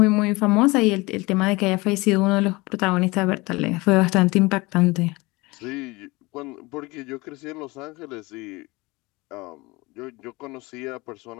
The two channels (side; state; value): right; quieter; 23.4 dB